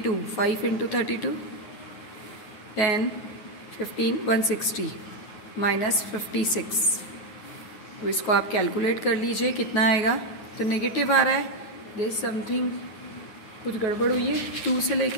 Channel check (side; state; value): right; late; 9.5 ms